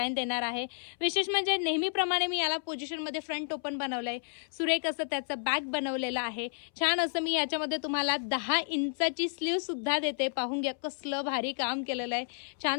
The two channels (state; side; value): silent; right; 57 dB below the other